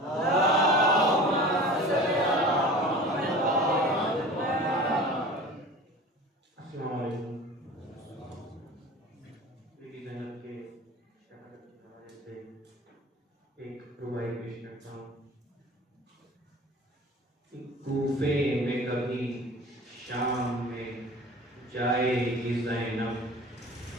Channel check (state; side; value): normal; both; correlation 0.39